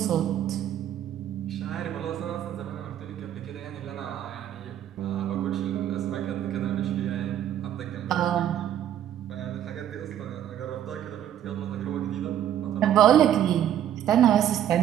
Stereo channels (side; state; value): left; quieter; 10.8 dB